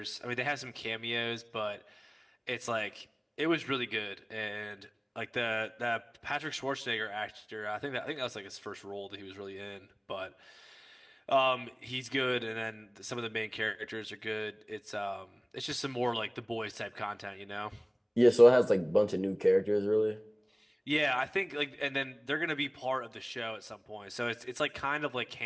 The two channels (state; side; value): identical; both; correlation 1.00